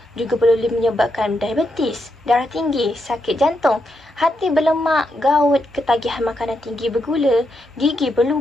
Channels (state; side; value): normal; both; correlation 0.82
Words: Juga boleh menyebabkan diabetes, darah tinggi, sakit jantung, hati berlemak, gout, ketagihan makanan tinggi bergula, gigi